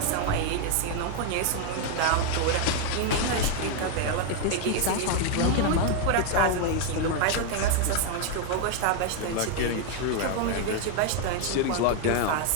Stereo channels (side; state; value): both; different; correlation 0.00